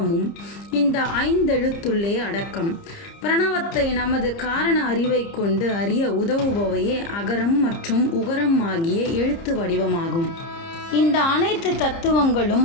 இந்த 5 எழுத்துள்ளே அடக்கம். பிரணவத்தை நமது காரண அறிவை கொண்டு அறிய உதவுபவையே அகரம் மற்றும் உகரம் ஆகிய எழுத்து வடிவமாகும். இந்த அனைத்து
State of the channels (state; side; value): late; right; 30 ms